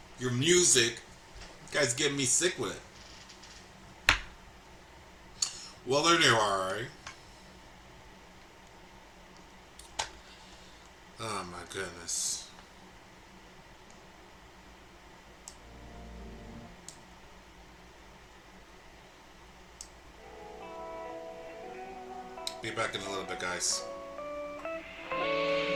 music. You guys getting me sick with it. Well, there you are, right? Oh my goodness. Be back in a little bit, guys.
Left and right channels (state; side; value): identical; both; correlation 1.00